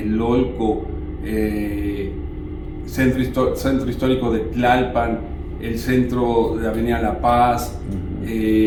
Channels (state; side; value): identical; both; correlation 1.00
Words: Centro Histórico de Tlalpan, el centro de Avenida La Paz,